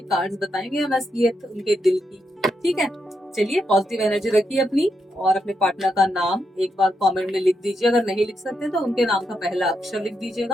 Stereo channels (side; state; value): both; normal; correlation 0.82